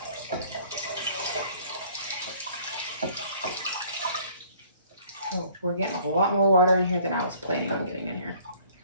Oh, we're getting a lot more water in here than I was planning on getting in here.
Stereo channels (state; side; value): inverted; both; correlation -0.56